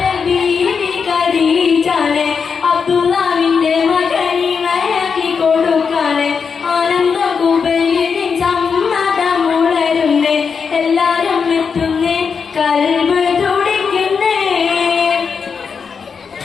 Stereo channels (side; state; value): right; quieter; 5.9 dB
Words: ബീവി ഖദീജാനെ അബ്ദുല്ലാവിന്റെ മകനിണയാക്കി കൊടുക്കാനെ ആനന്ദം കുബൈലിന് സമ്മതമുളരുന്നേ എല്ലാരും എത്തുന്നേ കൽബ് തുടിക്കുന്നേ